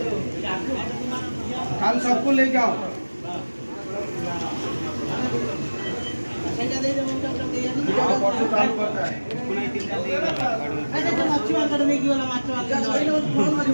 कल सबको लेके आओ। परसों चालू करता है।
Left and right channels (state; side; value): inverted; both; correlation -1.00